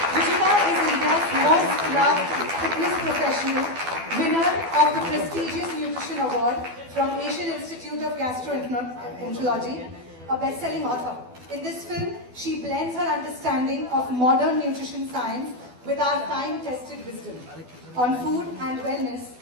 Ruchita is India's most loved fitness professional, winner of the prestigious Nutrition Award from Asian Institute of Gastroenterology, a best-selling author. In this film, she blends her understanding of modern nutrition science with our time-tested wisdom on food and wellness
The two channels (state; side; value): late; left; 12 ms